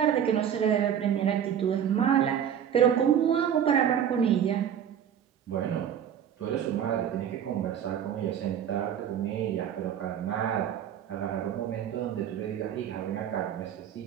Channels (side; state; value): left; quieter; 9.1 dB